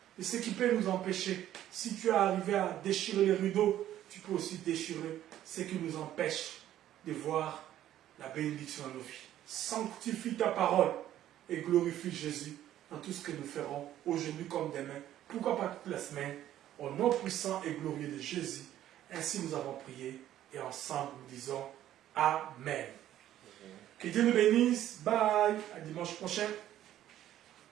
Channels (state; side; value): quieter; left; 12.4 dB